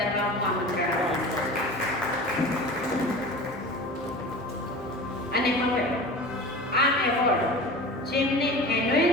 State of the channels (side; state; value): both; normal; correlation 0.35